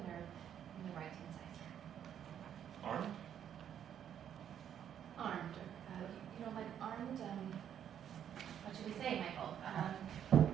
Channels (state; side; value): quieter; left; 9.4 dB